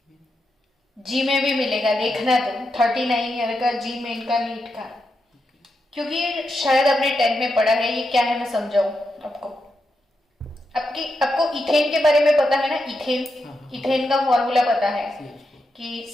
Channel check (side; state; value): both; normal; correlation 0.85